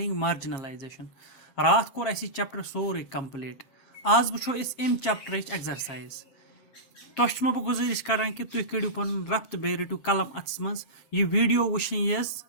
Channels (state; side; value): late; right; 7.6 ms